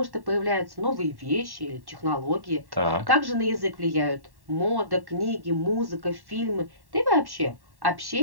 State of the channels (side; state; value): left; late; 1.1 ms